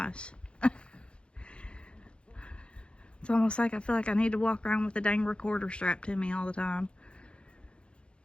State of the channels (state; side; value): late; right; 0.057 ms